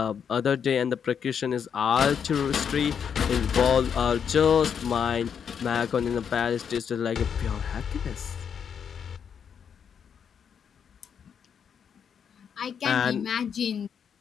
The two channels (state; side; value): quieter; right; 7.5 dB